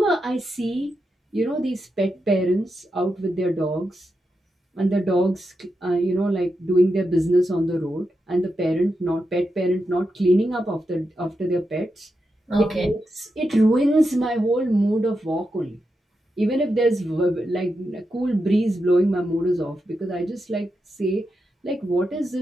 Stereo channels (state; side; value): normal; both; correlation 0.87